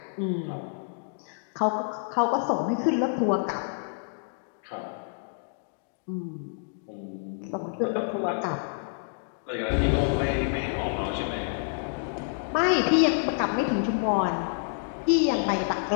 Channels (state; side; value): silent; right; digital silence